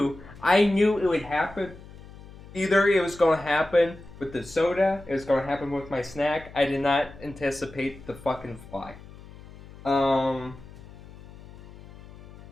it would happen. Either it was going to happen with the soda, it was going to happen with my snack. I did not anticipate the fucking fly. I'd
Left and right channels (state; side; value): noise; left; hum, 19 dB below the sound